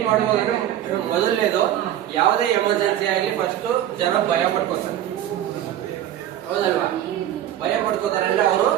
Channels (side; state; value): left; quieter; 11.8 dB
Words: ಮಾಡ್ಬೋದು ಅಂದ್ರೆ, ಮೊದಲನೇದು, ಯಾವುದೇ ಎಮರ್ಜೆನ್ಸಿ ಆಗಲಿ ಫಸ್ಟ್ ಜನ ಭಯ ಪಡ್ಕೋತಾರೆ. ಹೌದಲ್ವಾ? ಭಯ ಪಡ್ಕೋತಾರೆ ಅಂದ್ರೆ ಅವರು